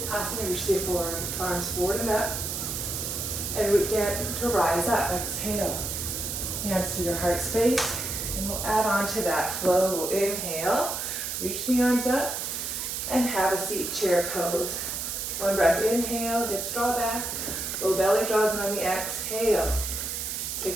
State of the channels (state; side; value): noise; right; hiss, 3 dB below the sound